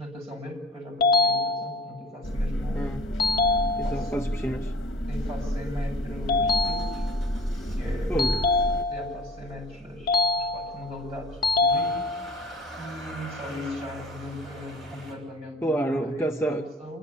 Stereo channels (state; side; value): normal; both; correlation 0.43